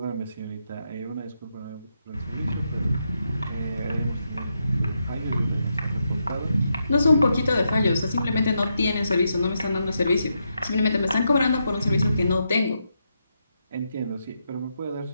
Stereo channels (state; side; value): inverted; both; correlation -0.83